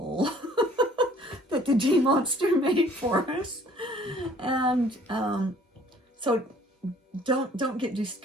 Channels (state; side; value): normal; both; correlation 0.56